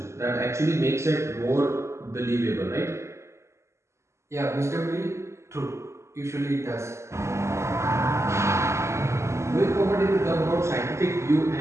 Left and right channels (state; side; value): late; left; 0.13 ms